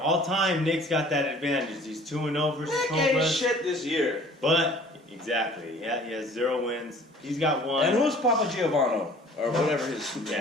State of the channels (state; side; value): normal; both; correlation 0.50